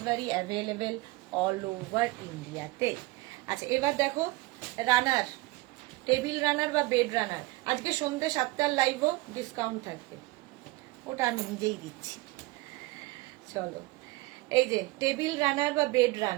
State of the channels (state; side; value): quieter; left; 21.2 dB